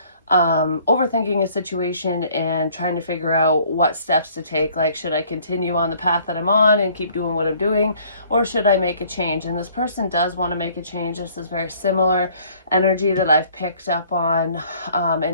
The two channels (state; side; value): inverted; both; correlation -0.57